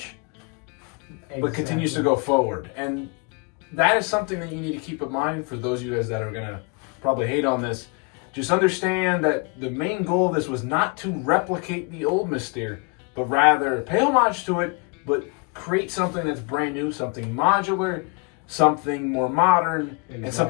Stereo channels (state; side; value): quieter; right; 31.8 dB